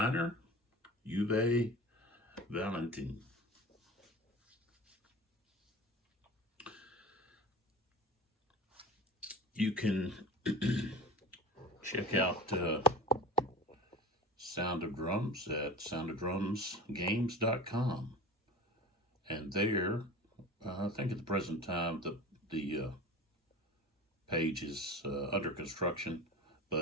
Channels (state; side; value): normal; both; correlation 0.35